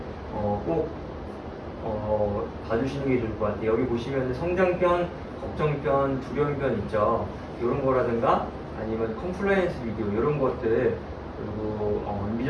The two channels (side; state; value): both; identical; correlation 1.00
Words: 꼭 봐주시는 게 좋을 것 같아요. 여기 보시면 성장편, 걱정편, 두려움편 있죠. 이런 거라든가 아니면 컴플라이언스 비디오 이런 것들 그리고